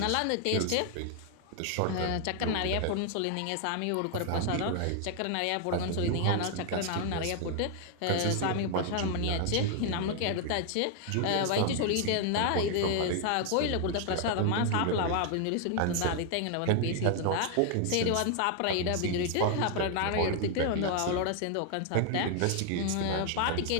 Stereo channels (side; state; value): both; different; correlation 0.00